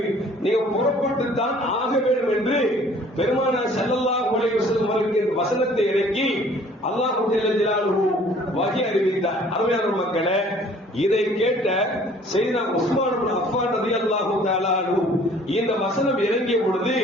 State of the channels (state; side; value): normal; both; correlation 0.54